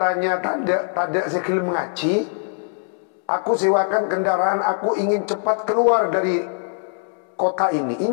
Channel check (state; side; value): silent; right; 64 dB below the other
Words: tak ada sekil mengaji, aku sewakan kendaraan, aku ingin cepat keluar dari kota ini.